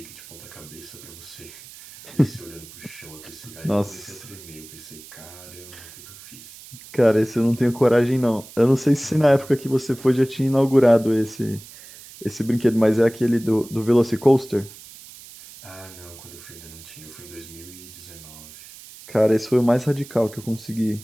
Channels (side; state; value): right; noise; hiss, 18 dB below the sound